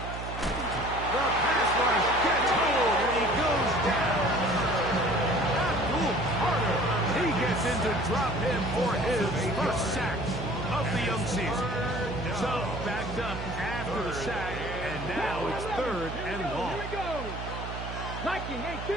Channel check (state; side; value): noise; right; hum, 8 dB below the sound